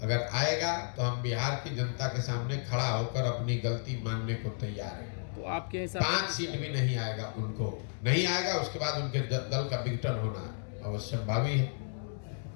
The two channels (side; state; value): right; silent; 56 dB below the other